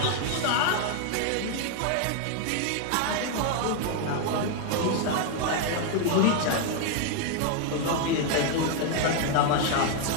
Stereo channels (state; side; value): different; both; correlation 0.01